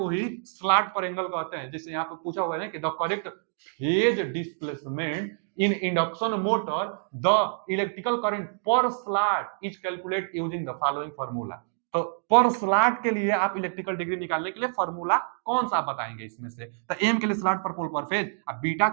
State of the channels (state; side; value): silent; left; digital silence